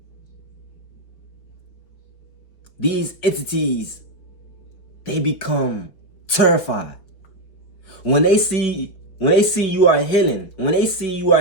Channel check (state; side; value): late; right; 5.0 ms